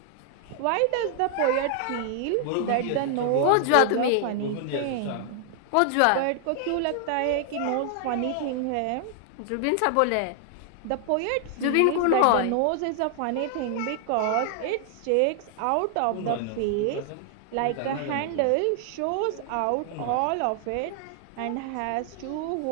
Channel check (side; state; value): both; different; correlation 0.00